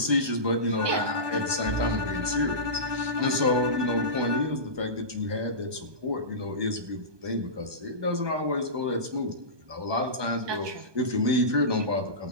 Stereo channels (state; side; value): late; left; 1.2 ms